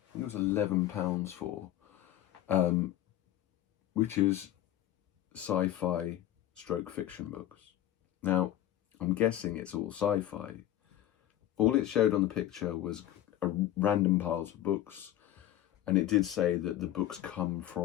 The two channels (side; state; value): right; quieter; 12.8 dB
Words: think it was £11 for, which is sci-fi stroke fiction books. Now, I'm guessing it's all sci-fi. All it showed on the picture was random piles of books, and it did say that the books come